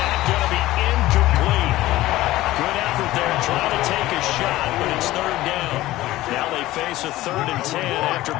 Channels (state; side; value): quieter; right; 16.5 dB